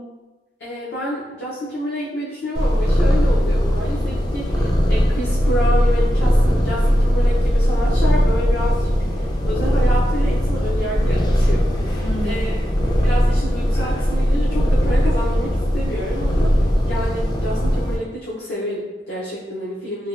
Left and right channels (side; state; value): both; normal; correlation 0.90